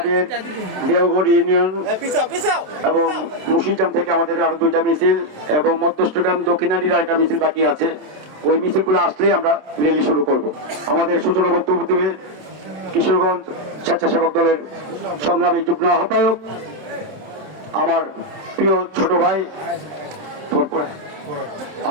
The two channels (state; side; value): late; left; 27 ms